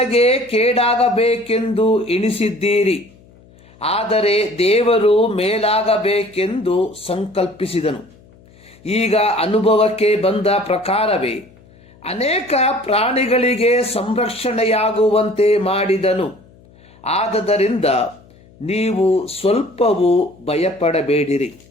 ಕೇಡಾಗಬೇಕೆಂದು ಎಣಿಸಿದ್ದೀರಿ, ಆದರೆ ದೇವರು ಮೇಲಾಗಬೇಕೆಂದು ಸಂಕಲ್ಪಿಸಿದನು. ಈಗ ಅನುಭವಕ್ಕೆ ಬಂದ ಪ್ರಕಾರವೇ ಅನೇಕ ಪ್ರಾಣಿಗಳಿಗೆ ಸಂರಕ್ಷಣೆಯಾಗುವಂತೆ ಮಾಡಿದನು. ಆದದರಿಂದ ನೀವು ಸ್ವಲ್ಪವೂ ಭಯಪಡಬೇಡಿರಿ.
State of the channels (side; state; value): left; noise; hum, 27 dB below the sound